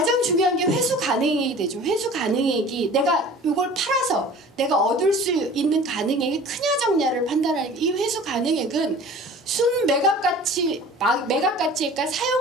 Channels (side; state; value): both; normal; correlation 0.43